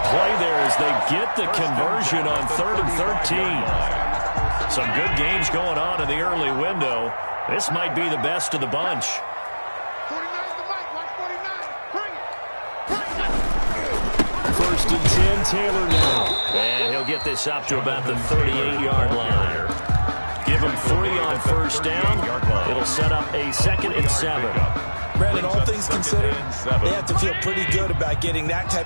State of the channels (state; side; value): inverted; both; correlation -1.00